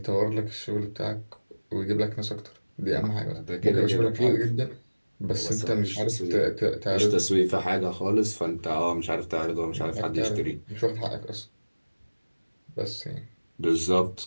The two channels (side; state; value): both; inverted; correlation -1.00